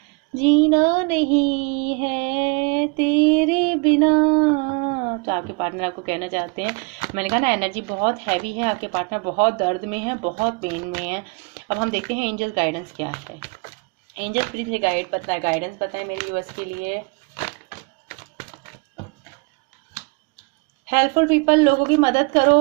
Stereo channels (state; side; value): quieter; left; 32.0 dB